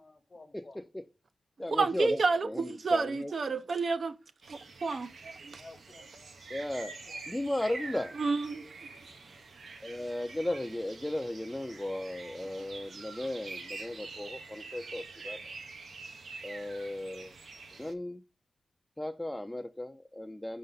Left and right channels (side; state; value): both; normal; correlation 0.94